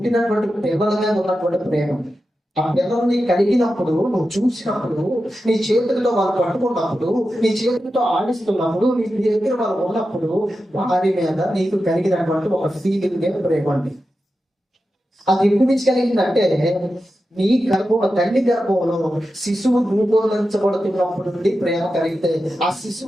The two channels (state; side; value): normal; both; correlation 0.91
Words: పిల్లల మీద ఉన్నటువంటి ప్రేమ. ఆ పిల్లల్ని కలిగినప్పుడు, నువ్వు చూసినప్పుడు, నీ చేతులతో వాళ్ళు పట్టుకున్నప్పుడు, నీ చేతులతో ఆడిస్తున్నప్పుడు, నీ దగ్గర వాళ్ళు ఉన్నప్పుడు వారి మీద నీకు కలిగినటువంటి ఒక ఫీలింగ్ ప్రేమండి. అది ఎప్పుడు నుంచి కలిగిందంటే నీ గర్భంలో, తల్లి గర్భంలో శిశువు రూపొందించబడుతున్నప్పుడు నుండి ప్రేమ కలిగితే, ఆ